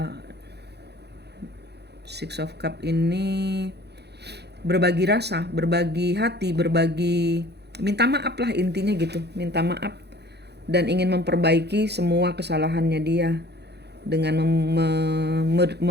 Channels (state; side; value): late; left; 0.48 ms